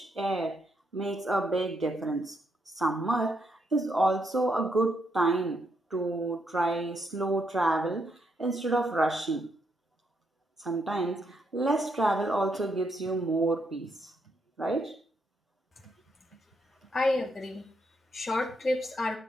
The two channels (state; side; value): normal; both; correlation 0.78